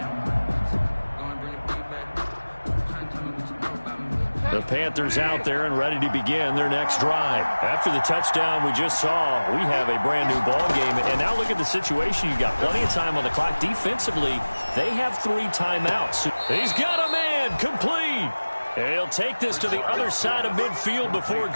The Panthers out there and ready to begin their next drive. After the touchdown we just saw, we have a brand new ball game. And now look at the situation. You've got plenty of time on the clock. Defensively, they have 3 timeouts. He's got a man complete. And he'll take this to the other side of midfield before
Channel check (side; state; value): both; inverted; correlation -1.00